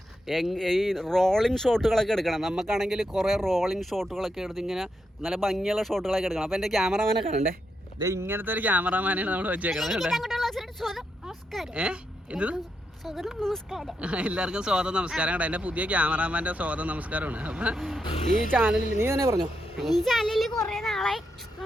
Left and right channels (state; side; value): normal; both; correlation 0.83